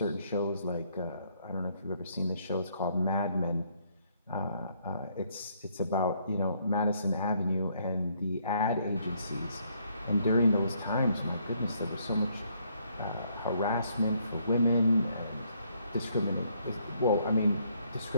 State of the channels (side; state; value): both; inverted; correlation -0.70